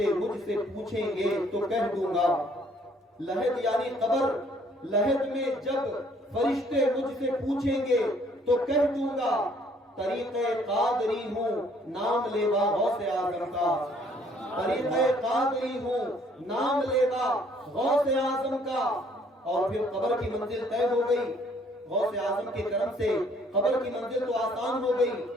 مجھ سے پوچھیں گے تو کہہ دوں گا، لحد یعنی قبر، لحد میں جب فرشتے مجھ سے پوچھیں گے تو کہہ دوں گا طریقہ قادری ہوں نام لیوا غوث اعظم کا، طریقہ قادری ہوں نام لیوا غوث اعظم کا۔ اور پھر قبر کی منزل طے ہو گئی، غوث اعظم کے کرم سے قبر کی منزل تو آسان ہو گئی۔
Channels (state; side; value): normal; both; correlation 0.62